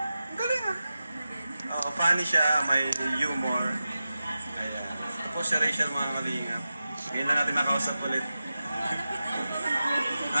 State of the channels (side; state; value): both; inverted; correlation -0.93